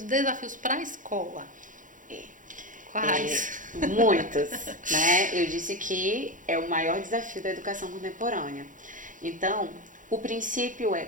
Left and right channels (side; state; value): left; late; 0.38 ms